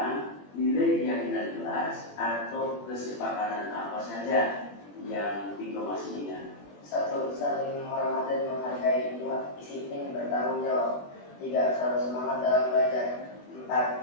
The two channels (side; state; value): right; late; 21 ms